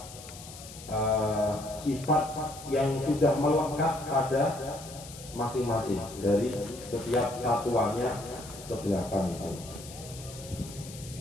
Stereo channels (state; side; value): noise; left; hiss, 15 dB below the sound